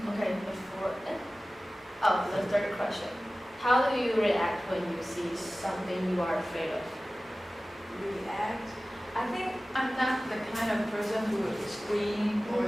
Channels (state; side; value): normal; both; correlation 0.97